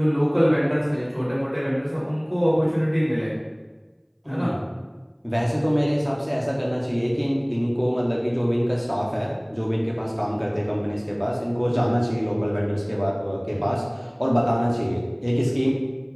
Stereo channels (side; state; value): both; identical; correlation 1.00